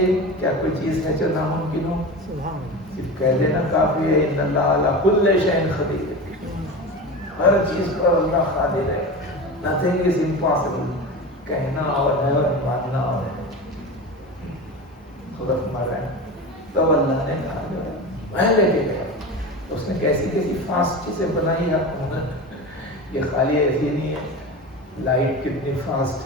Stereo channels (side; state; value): both; normal; correlation 0.28